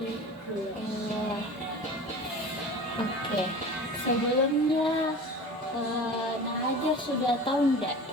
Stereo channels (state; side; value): normal; both; correlation 0.36